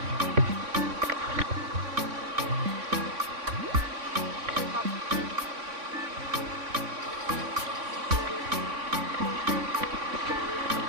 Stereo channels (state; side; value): late; left; 3.6 ms